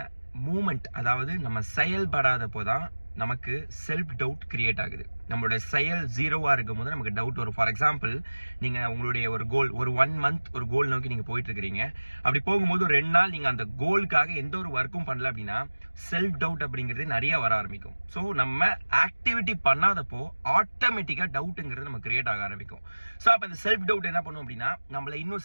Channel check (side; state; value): both; inverted; correlation -1.00